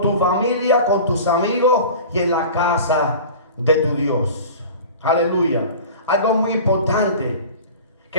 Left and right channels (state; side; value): inverted; both; correlation -0.38